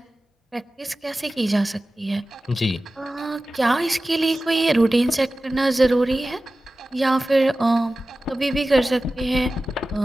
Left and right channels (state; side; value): normal; both; correlation 0.96